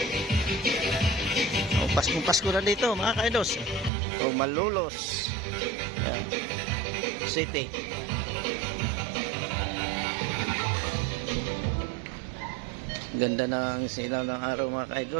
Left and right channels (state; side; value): drops out; left; at 3.9 s